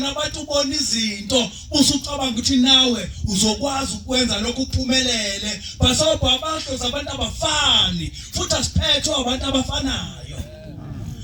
abantu ubona izinto usucabanga ukuthi nawe uzokwazi ukwenza lokho uphumelele basobha abahlozi abantu abafani futhi asiphethwe abantu abafanayo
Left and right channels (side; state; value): both; identical; correlation 1.00